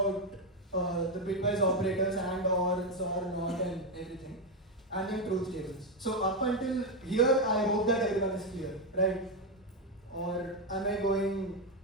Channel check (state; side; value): normal; both; correlation 0.06